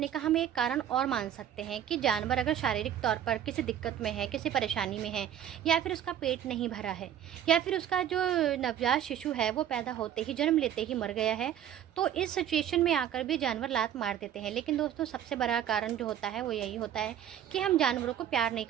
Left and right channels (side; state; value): left; quieter; 10.2 dB